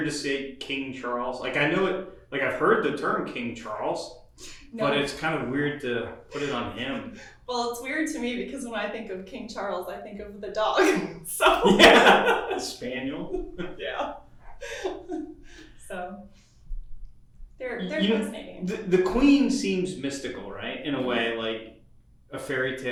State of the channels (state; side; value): identical; both; correlation 1.00